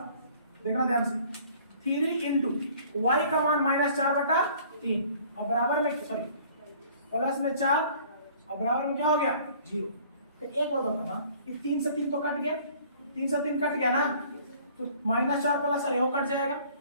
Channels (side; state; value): both; inverted; correlation -0.53